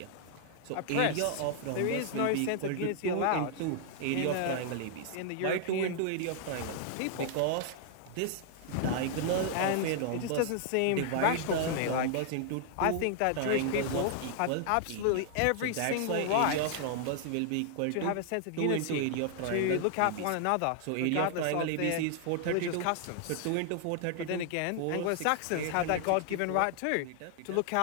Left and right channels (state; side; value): different; both; correlation -0.01